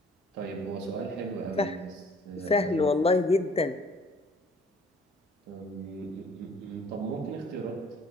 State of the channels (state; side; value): normal; both; correlation 0.56